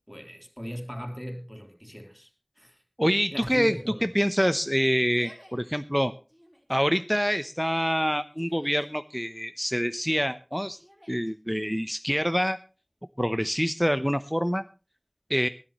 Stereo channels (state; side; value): identical; both; correlation 1.00